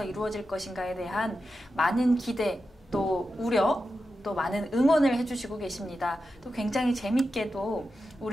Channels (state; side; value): normal; both; correlation 0.90